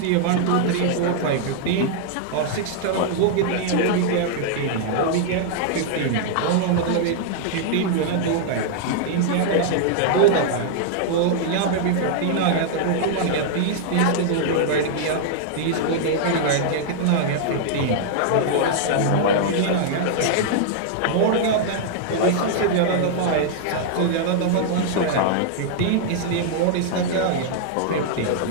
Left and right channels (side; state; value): both; different; correlation -0.01